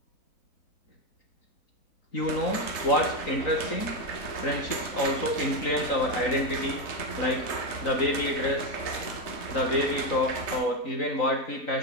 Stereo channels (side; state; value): right; late; 3.9 ms